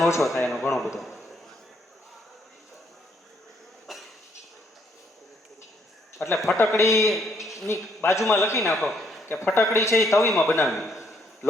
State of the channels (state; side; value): normal; both; correlation 0.70